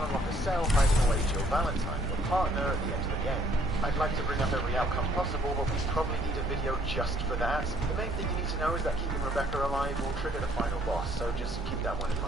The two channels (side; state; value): both; normal; correlation 0.64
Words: unlock a cell hiding away Jill Valentine, your partner, at the end of the game. I'd like to bring up every outcome possible, but we probably need a video just for that. The main thing you need to know is that keeping Rebecca alive will trigger the final boss, so just keep that one in